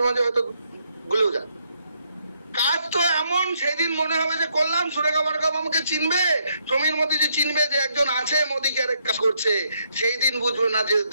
মাঝে হয়তো ভুলেও যান। কাজ তো এমন সেই দিন মনে হবে যে করলাম, সুরেখা বড়কাপ আমাকে চিনবে, সমীর মোদী যে চিনবে যে একজন আছে মোদী কেয়ারে কাজ করছে, সেই দিন বুঝবো না যে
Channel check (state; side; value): inverted; both; correlation -0.74